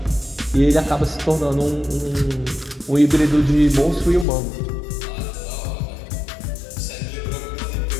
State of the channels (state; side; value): drops out; right; at 4.2 s